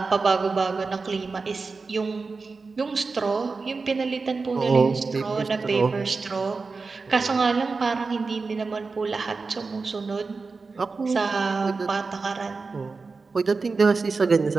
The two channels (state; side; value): quieter; left; 4.3 dB